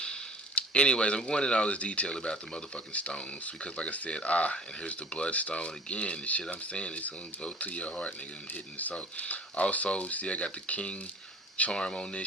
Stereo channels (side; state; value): both; normal; correlation 0.45